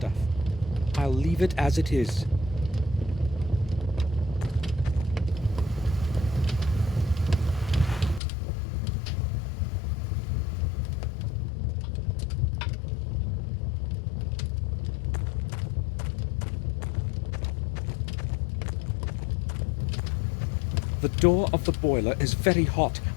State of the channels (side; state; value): right; drops out; at 8.2 s